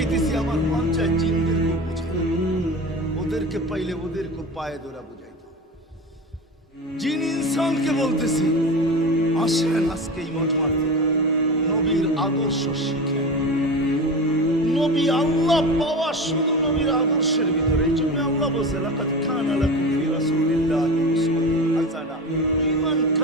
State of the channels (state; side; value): normal; both; correlation 0.28